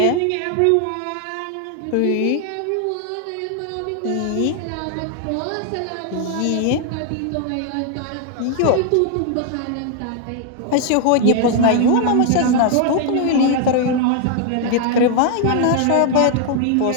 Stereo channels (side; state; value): both; different; correlation 0.00